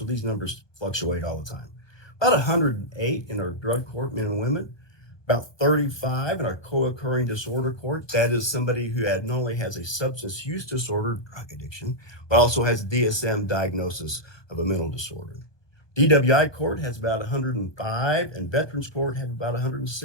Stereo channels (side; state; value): right; late; 1.2 ms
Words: these numbers fluctuate all the time. About 108 in our drug court, men and women. About 35 in our co-occurring disorder court. That is somebody who not only has a substance use disorder, drug addiction, but also has DSM diagnosis of a mental disorder. DWI court has about 105, and Veterans Court have about